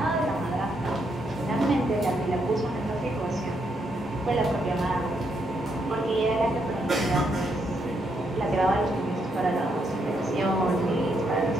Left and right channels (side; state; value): both; normal; correlation 0.77